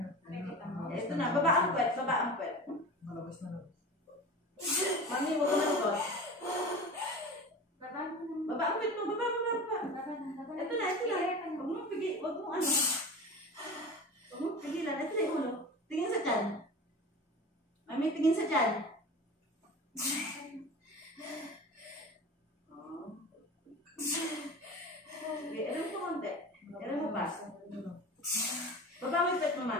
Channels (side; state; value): both; normal; correlation 0.34